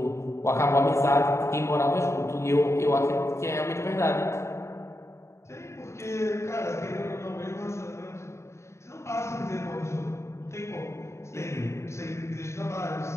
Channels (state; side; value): late; right; 0.14 ms